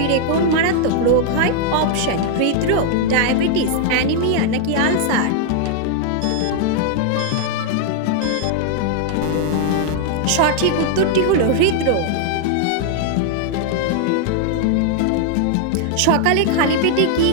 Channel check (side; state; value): both; different; correlation 0.00